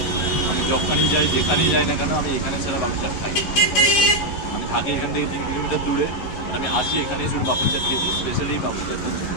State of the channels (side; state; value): right; late; 11 ms